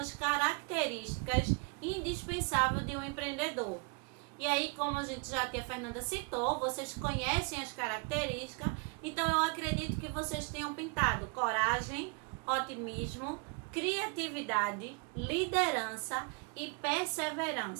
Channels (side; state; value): left; quieter; 33.0 dB